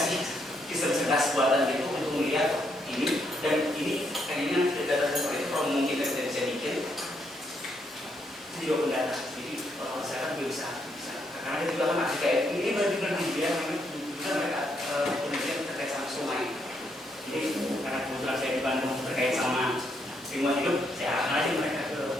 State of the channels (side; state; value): both; normal; correlation 0.75